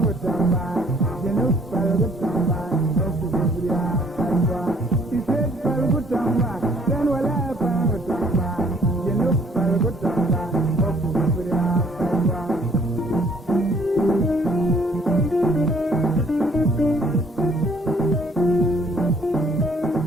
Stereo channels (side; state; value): both; normal; correlation 0.61